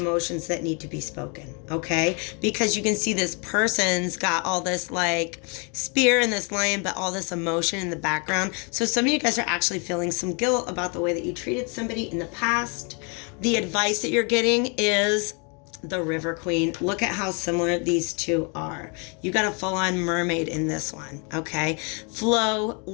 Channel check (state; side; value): quieter; right; 34.6 dB